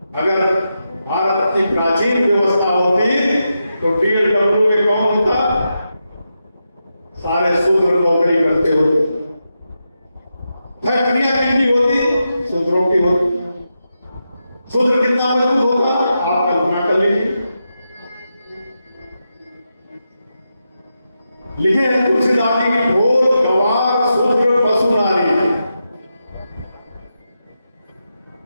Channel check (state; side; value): inverted; both; correlation -0.87